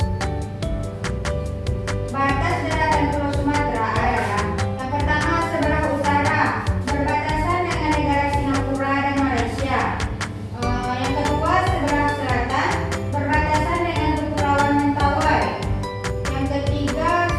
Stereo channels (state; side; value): identical; both; correlation 1.00